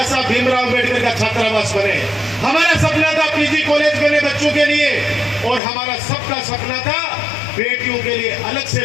साहब भीमराव अम्बेडकर का छात्रावास बने। हमारा सपना था पीजी कॉलेज बने बच्चों के लिए। और हमारा सबका सपना था बेटियों के लिए अलग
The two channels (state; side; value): drops out; right; at 5.6 s